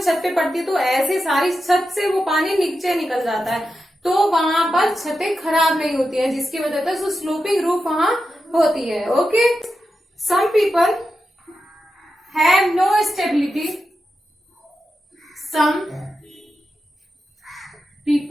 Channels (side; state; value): both; normal; correlation 0.90